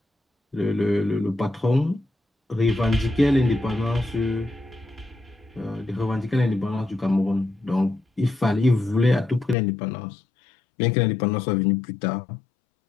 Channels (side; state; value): right; drops out; at 9.6 s